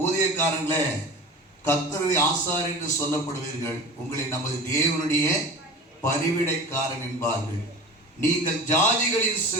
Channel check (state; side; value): normal; both; correlation 0.35